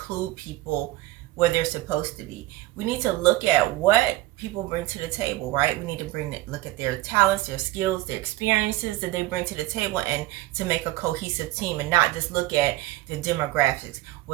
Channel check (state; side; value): quieter; left; 17.6 dB